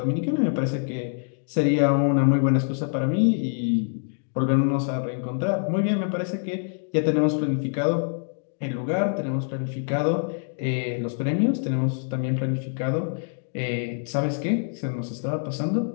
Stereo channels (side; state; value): right; silent; 62 dB below the other